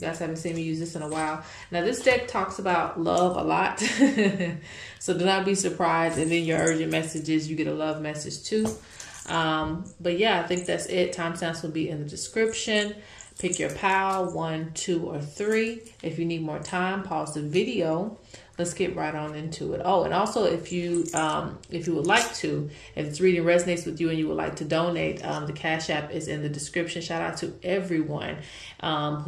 guys haven't seen me use this in a while. Now, this deck talks about love a lot. So do not be surprised if in your urgent messages you get a love message too. But yeah, I think that's it. Timestamps will be in the description. Pick your pal, 1, 2, or 3. If you need more time, pause the video. Let's get right on into it. Oh, and also if you would like to, if this reading resonates with you and you would like to donate, the Cash App is in the description. Shout out to everyone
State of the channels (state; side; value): identical; both; correlation 1.00